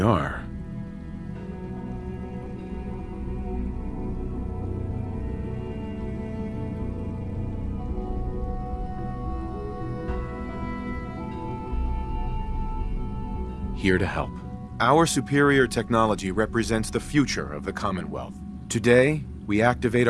Here to help. Our superior technology represents the future of the Commonwealth. Today, we activate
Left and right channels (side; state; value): both; identical; correlation 1.00